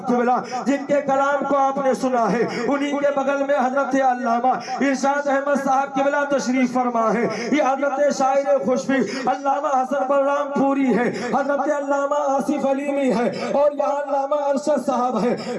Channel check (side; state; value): both; identical; correlation 1.00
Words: क़िबला जिनके कलाम को आपने सुना है, उन्हीं के बगल में हजरत अल्लामा इरशाद अहमद साहब क़िबला तशरीफ फरमा है। ये हजरत शायर खुशबी अल्लामा हसन बलराम पूरी है, हजरत अल्लामा आसिफ अलीमी है, और यहाँ अल्लामा अरशद साहब है,